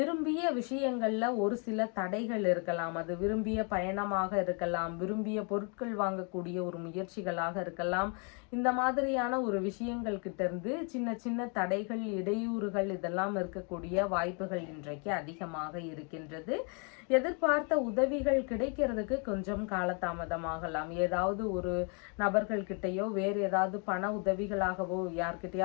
விஷயங்கள்ல ஒரு சில தடைகள் இருக்கலாம். அது விரும்பிய பயணமாக இருக்கலாம், விரும்பிய பொருட்கள் வாங்கக்கூடிய ஒரு முயற்சிகளாக இருக்கலாம். இந்த மாதிரியான ஒரு விஷயங்கள் கிட்ட இருந்து சின்ன சின்ன தடைகள், இடையூறுகள் இதெல்லாம் இருக்கக்கூடிய வாய்ப்புகள் இன்றைக்கு அதிகமாக இருக்கின்றது. எதிர்பார்த்த உதவிகள் கிடைக்கிறதுக்கு கொஞ்சம் காலதாமதமாகலாம். ஏதாவது ஒரு நபர்கள் கிட்டையோ வேறு ஏதாவது பண உதவிகளாகவோ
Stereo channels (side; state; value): right; quieter; 36.7 dB